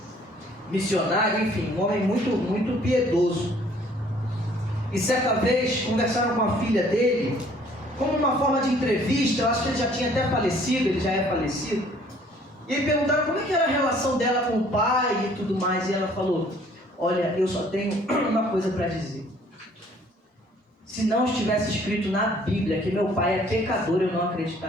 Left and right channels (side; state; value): both; normal; correlation 0.58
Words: missionário, enfim, um homem muito piedoso. E certa vez conversaram com a filha dele, como uma forma de entrevista. Eu acho que ele já tinha até falecido, ele já é falecido. E aí perguntaram como é que era a relação dela com o pai e tudo mais. E ela falou: olha, eu só tenho uma coisa para dizer. Se não estivesse escrito na Bíblia que meu pai é pecador, eu não